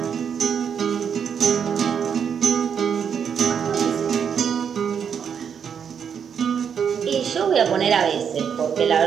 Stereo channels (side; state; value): left; quieter; 7.4 dB